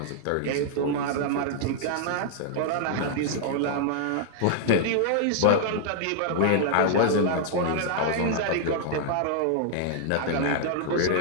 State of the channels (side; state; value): both; different; correlation -0.01